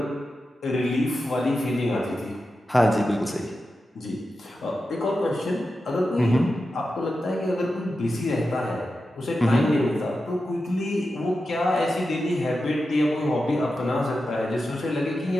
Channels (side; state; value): both; normal; correlation 0.91